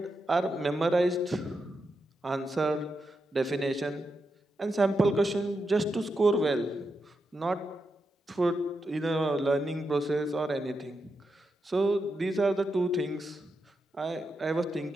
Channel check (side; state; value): both; normal; correlation 0.86